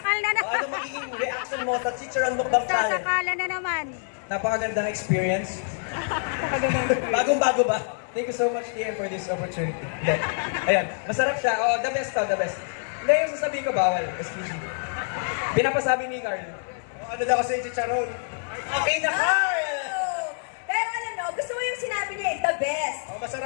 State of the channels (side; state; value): right; silent; digital silence